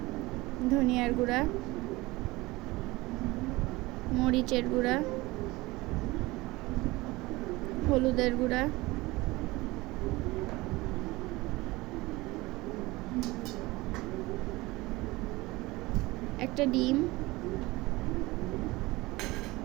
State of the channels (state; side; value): quieter; left; 21.0 dB